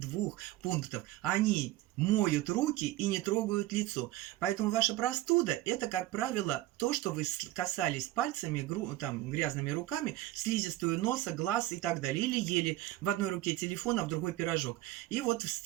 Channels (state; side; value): quieter; left; 16.2 dB